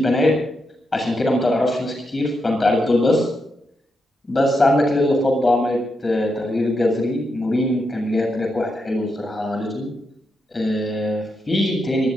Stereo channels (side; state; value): both; normal; correlation 0.84